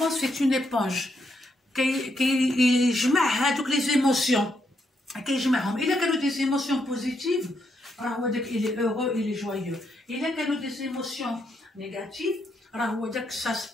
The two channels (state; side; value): normal; both; correlation 0.78